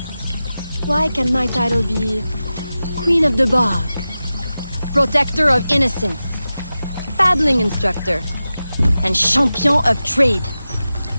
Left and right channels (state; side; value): inverted; both; correlation -0.94